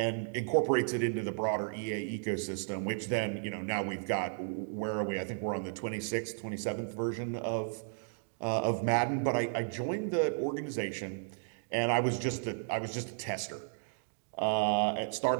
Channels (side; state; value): left; silent; digital silence